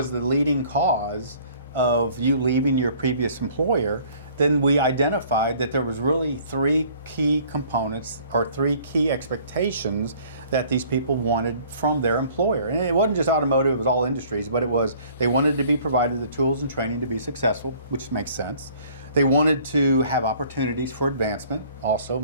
the leading cause of you leaving your previous employer, then we identified that there was really three key components or three key expectations that these people wanted from their employer. And it wasn't just automotive, it was all industries, but it was they wanted to be provided the tools and training to be successful, which makes sense. They wanted to have opportunities for advancement, also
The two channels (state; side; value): inverted; both; correlation -0.55